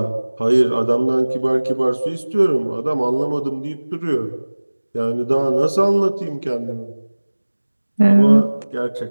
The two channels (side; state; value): both; inverted; correlation -1.00